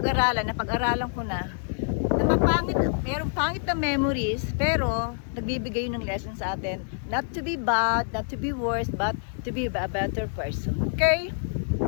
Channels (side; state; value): right; silent; digital silence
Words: ko na mapangit, merong pangit na memories, pero nagbibigay ng lesson sa atin. Not to be bad, not to be worse, but to be a better person. Okay?